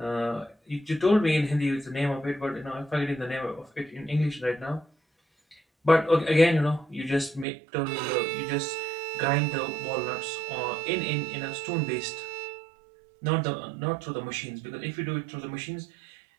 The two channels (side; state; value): left; drops out; at 7.5 s